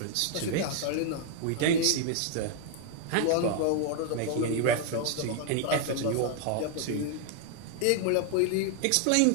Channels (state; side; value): different; both; correlation 0.00